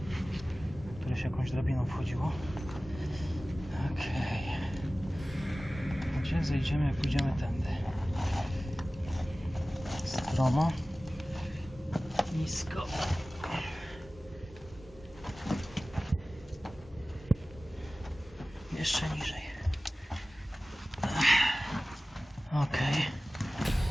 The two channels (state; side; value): normal; both; correlation 0.97